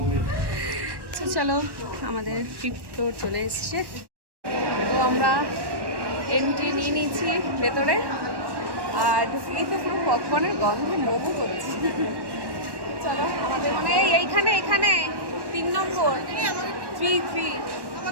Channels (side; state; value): left; late; 1.1 ms